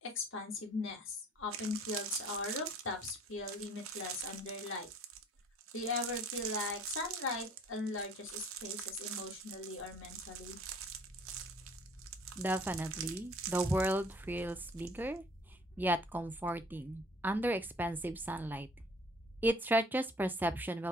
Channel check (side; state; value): both; normal; correlation 0.53